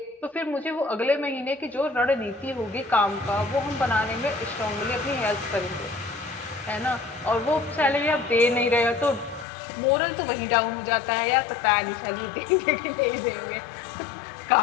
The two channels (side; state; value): right; drops out; at 9.5 s